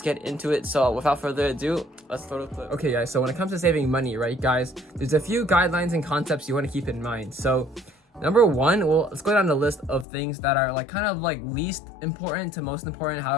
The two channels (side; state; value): right; drops out; at 10.1 s